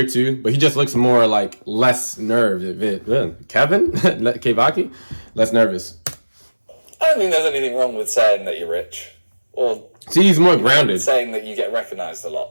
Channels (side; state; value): both; inverted; correlation -1.00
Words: too, but he just looks more like less nervous. Kevin? KEVAKI? Less nervous. I don't think there's anything wrong with saying that you're rich, or See, he's more grounded. saying that you get recognised a